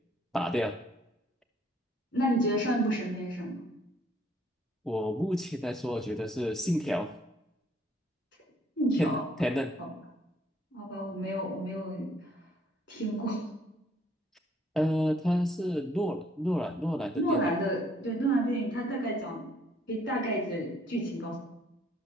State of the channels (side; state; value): both; normal; correlation 0.64